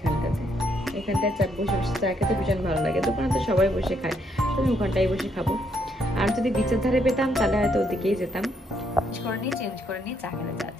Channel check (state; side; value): normal; both; correlation 0.73